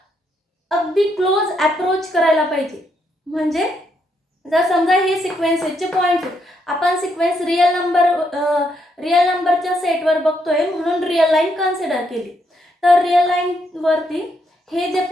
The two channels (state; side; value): normal; both; correlation 0.76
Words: अगदी क्लोज अप्रोच करायला पाहिजे. म्हणजे जर समजा हे सिक्वेन्सेसचे पॉईंट्स आहेत, आपण सिक्वेन्स रिअल नंबरच्या सेटवर बघतोय म्हणून रिअल लाईन कन्सिडर केली. तर रिअल लाईनवरती हे जे